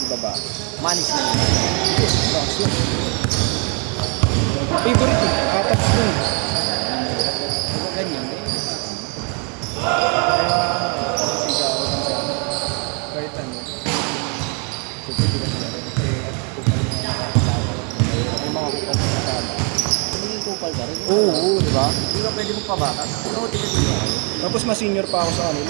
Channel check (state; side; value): quieter; left; 37.0 dB